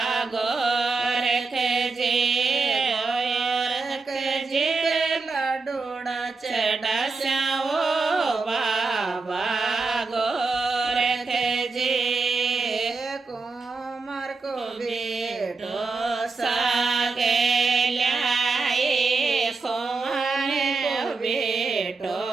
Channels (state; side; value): quieter; left; 4.1 dB